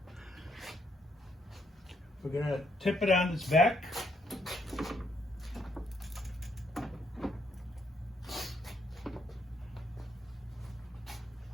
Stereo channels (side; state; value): both; normal; correlation 0.73